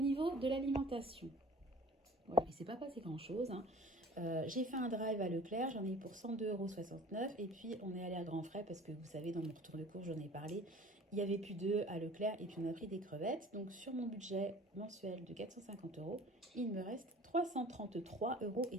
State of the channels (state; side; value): normal; both; correlation 0.45